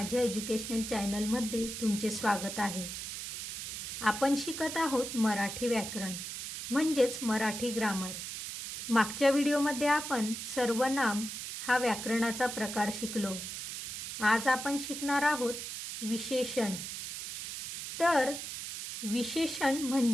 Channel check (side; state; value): right; noise; hiss, 6 dB below the sound